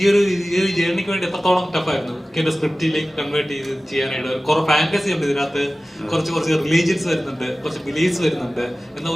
ഈ ഒരു ജേർണിക്ക് വേണ്ടി എത്രത്തോളം ടഫായിരുന്നു എന്റെ സ്ക്രിപ്റ്റിലേക്ക് കൺവേർട്ട് ചെയ്ത് ചെയ്യാനായിട്ട്? കുറെ ഫാന്റസി ഉണ്ട് ഇതിനകത്ത്, കുറച്ച് റിലീജിയൻസ് വരുന്നുണ്ട്, കുറച്ച് ബിലീഫ്സ് വരുന്നുണ്ട്, എന്നാൽ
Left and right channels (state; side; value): normal; both; correlation 0.96